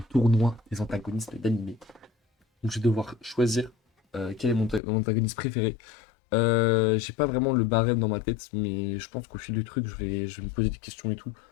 tournoi des antagonistes d'animé. Donc, je vais devoir choisir quel est mon antagoniste préféré. J'ai pas vraiment le barème dans ma tête, mais je pense qu'au fil du truc, je vais me poser des questions et tout.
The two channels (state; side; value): drops out; right; at 4.8 s